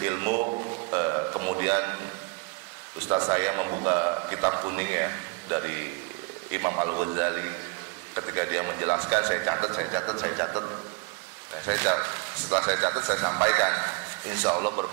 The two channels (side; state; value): left; quieter; 25.9 dB